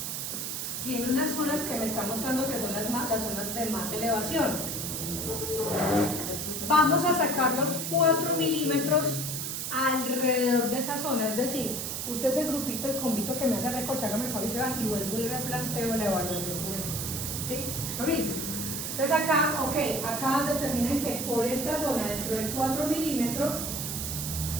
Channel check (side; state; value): right; noise; hiss, 3 dB below the sound